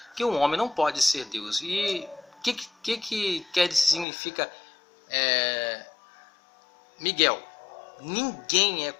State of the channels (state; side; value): drops out; right; at 4.0 s